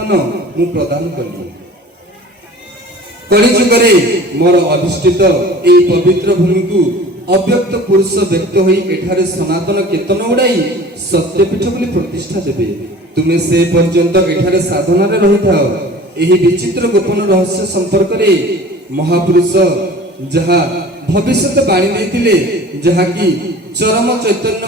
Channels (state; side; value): normal; both; correlation 0.43